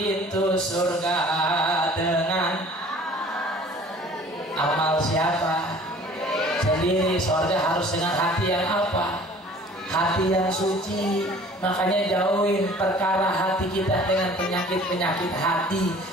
surga dengan amal siapa? Sendiri. Surga harus dengan hati yang apa? Hati yang suci. Makanya jauhin perkara hati kita dengan penyakit-penyakit hati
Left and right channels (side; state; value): both; normal; correlation 0.49